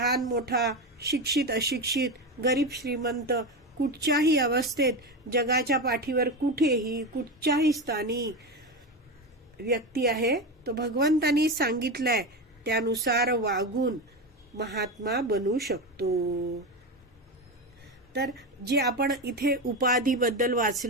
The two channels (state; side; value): normal; both; correlation 0.18